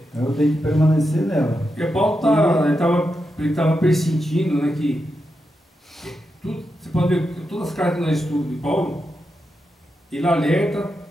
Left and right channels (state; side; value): normal; both; correlation 0.87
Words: eu tenho que permanecer nela. Porque Paulo estava persentindo, né, que tudo, você pode ver, todas as cartas que nós estudamos de Paulo, ele alerta